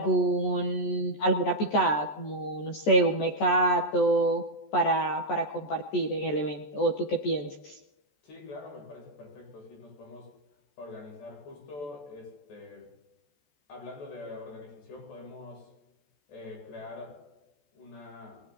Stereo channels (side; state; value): right; late; 14 ms